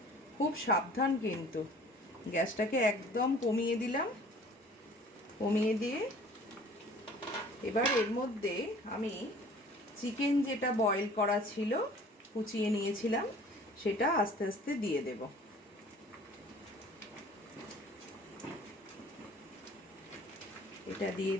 খুব সাবধান কিন্তু। গ্যাসটাকে একদম কমিয়ে দিলাম, কমিয়ে দিয়ে এবার এর মধ্যে আমি চিকেন যেটা বয়েল করা ছিল, কুচিয়ে নিয়েছিলাম, সেটা আস্তে আস্তে দিয়ে দেব। এটা দিয়ে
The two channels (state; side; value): normal; both; correlation 0.49